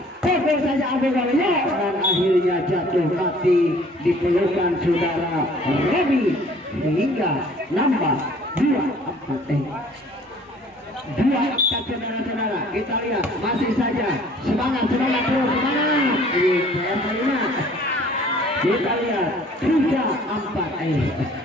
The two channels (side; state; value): both; normal; correlation 0.54